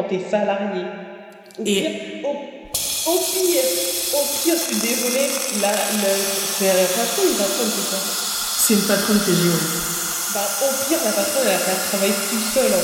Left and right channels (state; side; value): identical; both; correlation 1.00